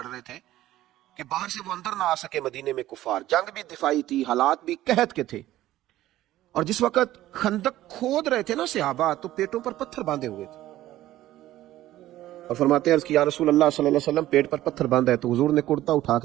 رہے تھے کہ باہر سے وہ اندر نہ آ سکے مدینے میں کفار۔ جنگ بھی دفاعی تھی، حالات بھی قحط کے تھے، اور جس وقت خندق کھود رہے تھے نا صحابہ، تو پیٹوں پر پتھر باندھے ہوئے تھے، اور فرماتے ہیں عرض کی یا رسول اللہ صلی اللہ علیہ وسلم پیٹ پر پتھر باندھا ہے، تو حضور نے کرتا اٹھا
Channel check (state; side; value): quieter; left; 14.7 dB